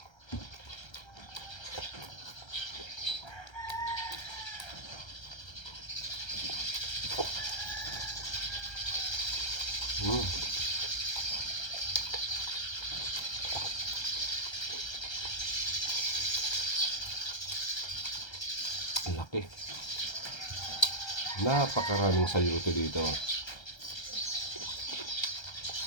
Laki. Napakaraming sayuti dito.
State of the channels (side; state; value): right; late; 1.3 ms